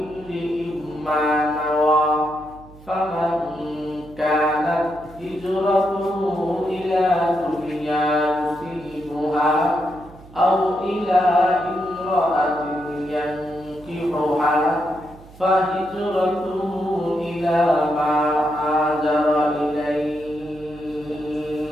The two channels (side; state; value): right; noise; hum, 21 dB below the sound